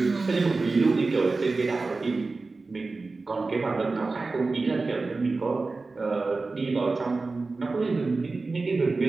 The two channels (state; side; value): quieter; left; 3.7 dB